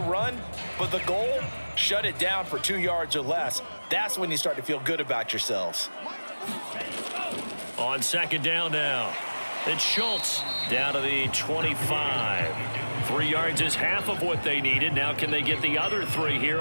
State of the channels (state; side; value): inverted; both; correlation -1.00